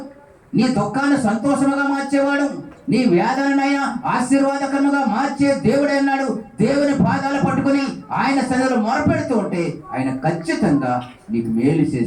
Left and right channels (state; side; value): identical; both; correlation 1.00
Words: నీ దుఃఖాన్ని సంతోషముగా మార్చేవాడు, నీ వేదనైనా ఆశీర్వాదకరముగా మార్చే దేవుడే అన్నాడు. దేవుని పాదాలు పట్టుకుని ఆయన సన్నిధిలో మొరపెడుతూ ఉంటే ఆయన ఖచ్చితంగా నీకు మేలు